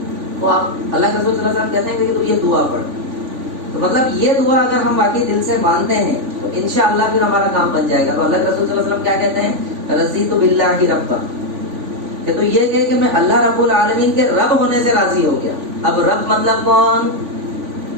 تو آپ اللہ کے رسول صلی اللہ علیہ وسلم کہتے ہیں کہ تو یہ دعا پڑھ. تو مطلب یہ دعا اگر ہم واقعی دل سے مانتے ہیں تو انشاءاللہ پھر ہمارا کام بن جائے گا. تو اللہ کے رسول صلی اللہ علیہ وسلم کیا کہتے ہیں؟ رضیت باللہ ربا، کہ تو یہ کہ میں اللہ رب العالمین کے رب ہونے سے راضی ہو گیا. اب رب مطلب کون؟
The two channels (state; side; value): late; left; 3.5 ms